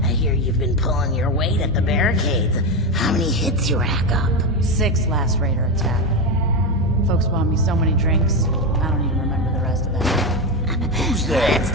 I hear you've been pulling your weight at the barricades. How many hits you rack up? 6 last raider attack. Folks bought me so many drinks, I don't even remember the rest of that. Who's there? That's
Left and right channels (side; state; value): both; normal; correlation 0.13